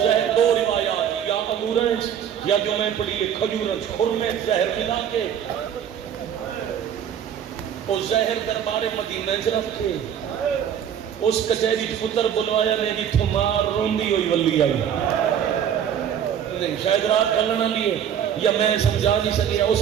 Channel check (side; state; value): left; quieter; 9.0 dB